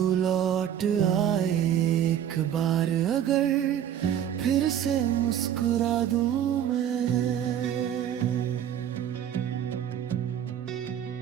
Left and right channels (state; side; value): quieter; left; 9.9 dB